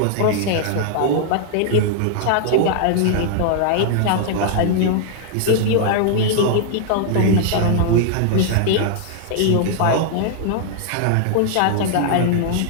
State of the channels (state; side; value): different; both; correlation 0.00